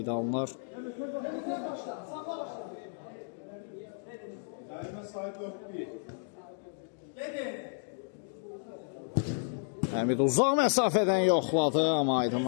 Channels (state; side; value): silent; right; digital silence